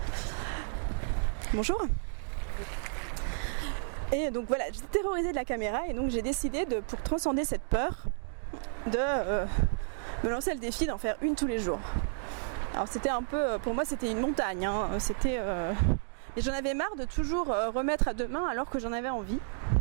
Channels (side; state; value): left; silent; digital silence